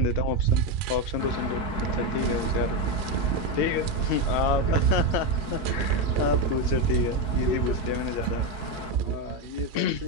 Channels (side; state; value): right; late; 4.7 ms